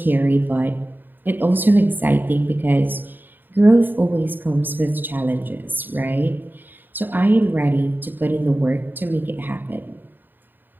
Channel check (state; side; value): late; left; 0.092 ms